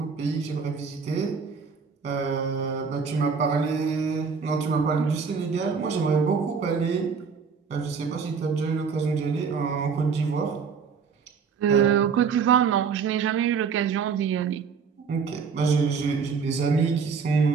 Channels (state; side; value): quieter; left; 5.8 dB